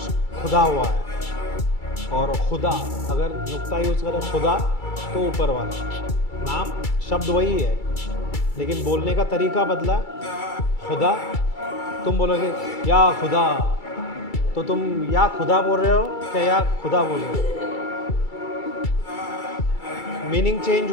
खुदा हुआ है, और खुदा अगर नुक्ता यूज़ करें खुदा तो ऊपर वाला। नाम शब्द वही है लेकिन बोलने का तरीका बदला। खुदा, तुम बोलोगे या खुदा, तो तुम या खुदा बोल रहे हो क्या या खुदा बोल रहे हो? मीनिंग चेंज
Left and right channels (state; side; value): late; right; 2.3 ms